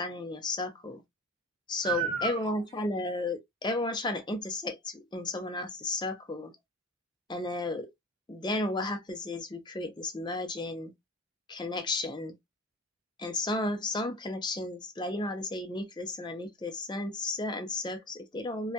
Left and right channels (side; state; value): both; normal; correlation 0.36